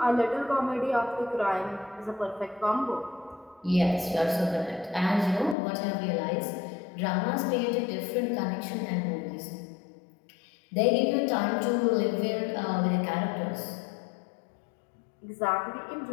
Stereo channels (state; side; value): drops out; right; at 5.6 s